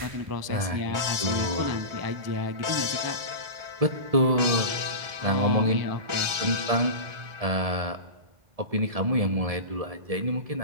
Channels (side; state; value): left; late; 1.4 ms